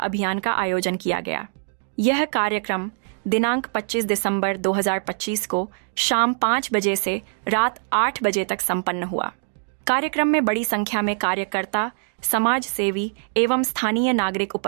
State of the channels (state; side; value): silent; left; digital silence